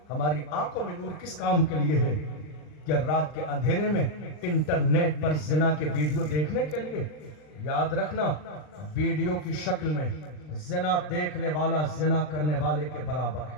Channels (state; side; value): late; right; 39 ms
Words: ہماری آنکھوں میں نور کس کام کے لیے ہے؟ کیا رات کے اندھیرے میں انٹرنیٹ پر زنا کے ویڈیو دیکھنے کے لیے؟ یاد رکھنا ویڈیو کی شکل میں زنا دیکھنے والا زنا کرنے والے کے برابر